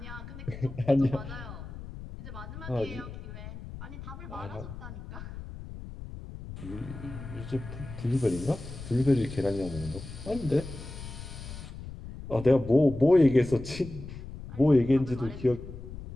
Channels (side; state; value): left; noise; rumble, 12 dB below the sound